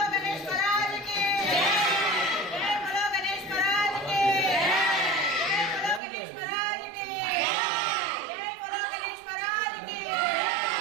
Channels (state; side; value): drops out; left; at 6.0 s